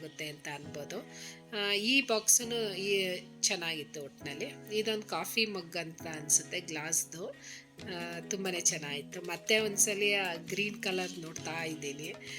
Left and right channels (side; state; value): both; identical; correlation 1.00